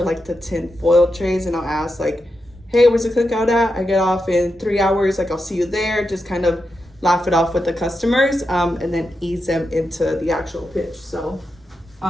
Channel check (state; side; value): normal; both; correlation 0.87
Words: like the tin foil trays, and I'll ask like, hey, where's the cookout at? I get off in 3 hours, like I'll see you there. Just kind of laugh it off with the customers, and then ease them into the actual pitch. So